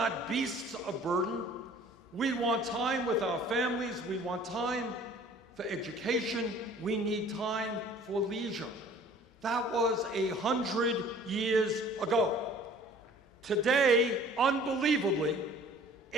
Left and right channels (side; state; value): both; normal; correlation 0.51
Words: beasts of burden. We want time with our families. We want time for education. We need time for leisure. That was 100 years ago. Today, unbelievably,